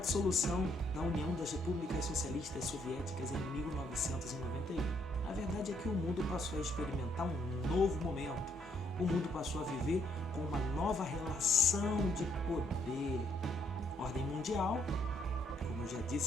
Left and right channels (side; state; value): both; normal; correlation 0.71